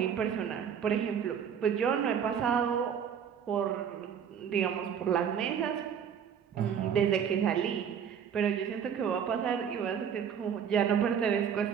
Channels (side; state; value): left; quieter; 7.9 dB